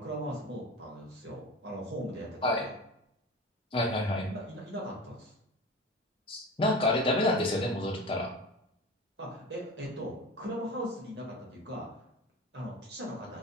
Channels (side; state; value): both; normal; correlation 0.32